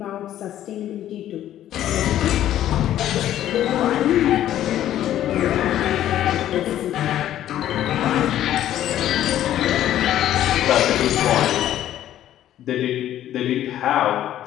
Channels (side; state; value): right; quieter; 12.2 dB